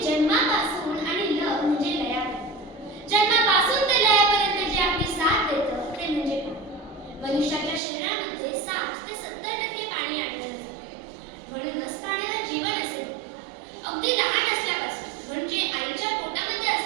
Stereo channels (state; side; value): drops out; left; at 7.8 s